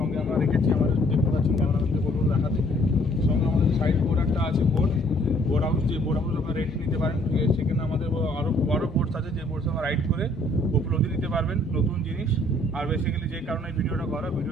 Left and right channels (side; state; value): both; normal; correlation 0.62